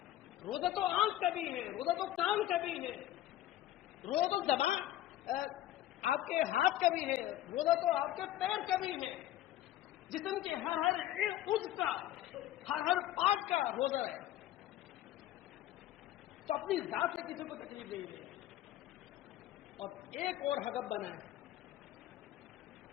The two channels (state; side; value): quieter; right; 13.7 dB